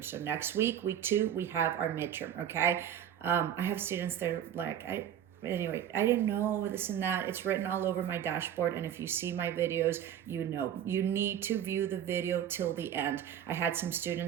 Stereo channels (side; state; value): left; quieter; 9.9 dB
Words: So next week, week 2, we have our midterm, okay? I have students that are like, I didn't know this and that. It's written all over my dashboard. And if you see my videos, you need to view the video till the end. I had some